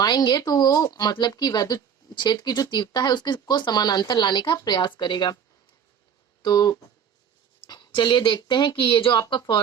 तो वो मतलब कि वैद्युत क्षेत्र की जो तीव्रता है उसके को समानांतर लाने का प्रयास करेगा। तो चलिए देखते हैं कि ये जो आपका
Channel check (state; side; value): quieter; left; 7.8 dB